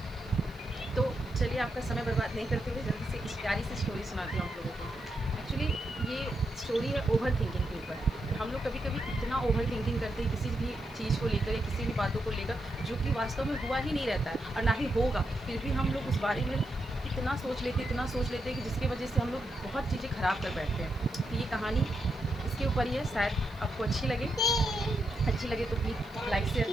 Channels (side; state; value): left; noise; hiss, 27 dB below the sound